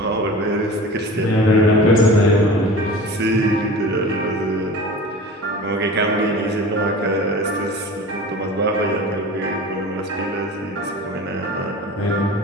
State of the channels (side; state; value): both; normal; correlation 0.37